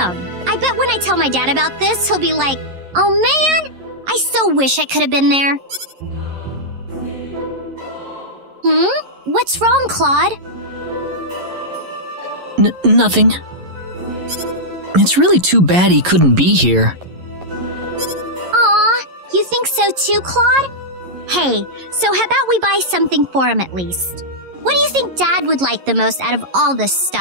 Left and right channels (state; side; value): late; left; 11 ms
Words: I bet when I tell my dad about this, he'll be like, oh man, I so so wish I could have been there. What's wrong, Claude? Nothing. It's really too bad he couldn't be here. Aw, you think so too, Claude? Hey, so how about we buy something for him at least? What do you think Dad would like the most out of all this